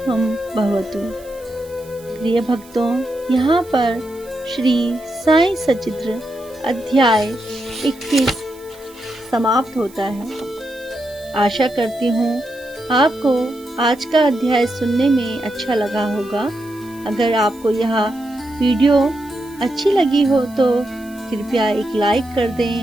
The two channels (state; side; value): noise; right; hiss, 24 dB below the sound